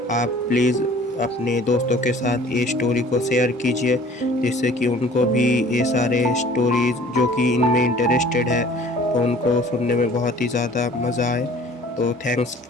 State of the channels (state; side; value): normal; both; correlation 0.50